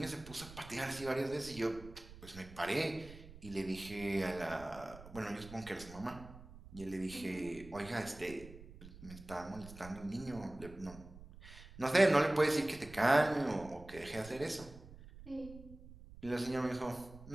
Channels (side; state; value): right; noise; rumble, 17 dB below the sound